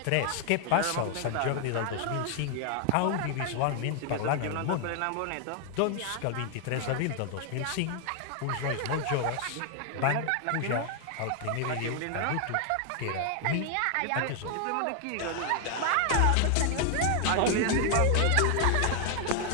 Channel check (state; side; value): different; both; correlation 0.00